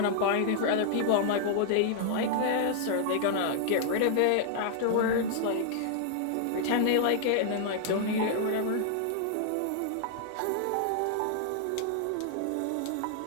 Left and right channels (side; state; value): both; different; correlation -0.01